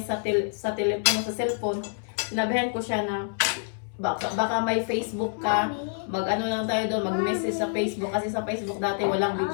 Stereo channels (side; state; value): right; silent; 60 dB below the other